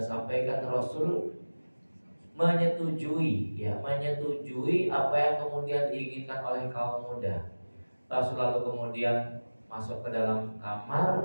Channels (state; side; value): inverted; both; correlation -1.00